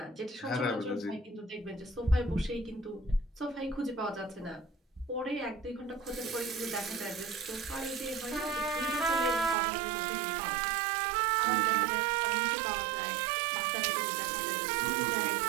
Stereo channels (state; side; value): drops out; left; at 9.6 s